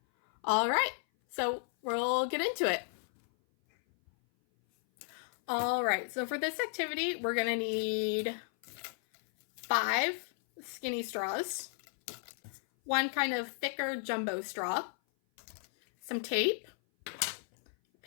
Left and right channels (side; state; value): right; silent; 55 dB below the other